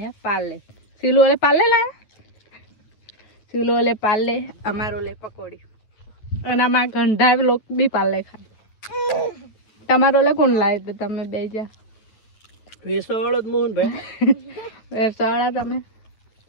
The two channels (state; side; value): late; right; 9.3 ms